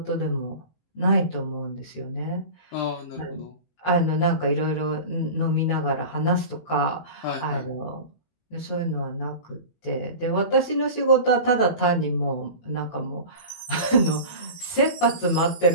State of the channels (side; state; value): right; late; 18 ms